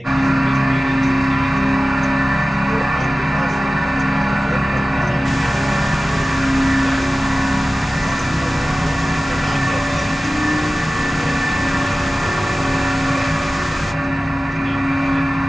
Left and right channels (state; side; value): normal; both; correlation 0.96